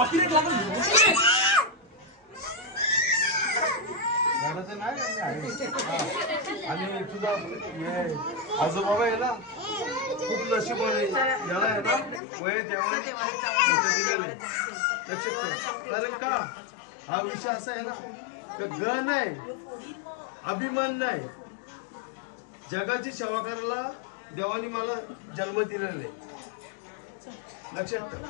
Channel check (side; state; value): right; drops out; at 12.2 s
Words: घराचं नाही का, मी आहे. हा. आणि तुझा हे आजोबाबा आहे ना, खूप नशिबाने याला आहे ना, वय देवाने मोठं दिलेलं आहे. लक्षात ठेव. कारण का हा विषय असा आहे ना, का गण नाही, अभिमान नाही. जगाची सेवा करायला देवाने मला जन्म दिलेला आहे. लक्षात ठेव.